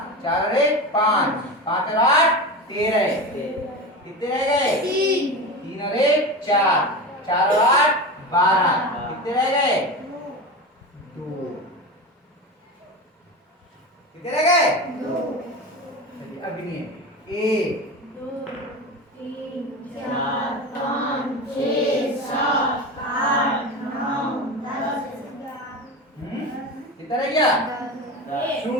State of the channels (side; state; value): both; normal; correlation 0.25